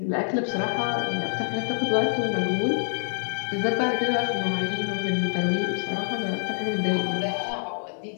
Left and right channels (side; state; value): right; silent; digital silence